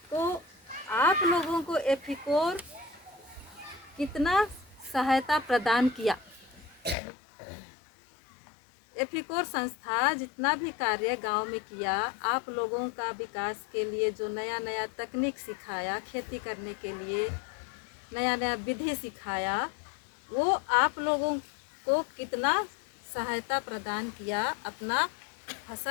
तो आप लोगों को एथिकोर कितना सहायता प्रदान किया? एथिकोर संस्था जितना भी कार्य गांव में किया, आप लोगों का विकास के लिए जो नया नया तकनीक सिखाया, खेती करने के लिए नया नया विधि सिखाया, वो आप लोगों को कितना सहायता प्रदान किया अपना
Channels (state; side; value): drops out; right; at 7.0 s